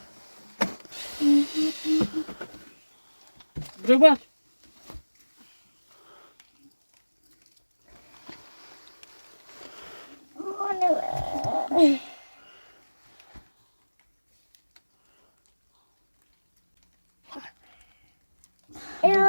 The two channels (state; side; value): inverted; both; correlation -1.00